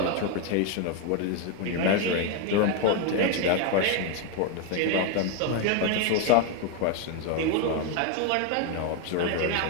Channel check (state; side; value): different; both; correlation 0.01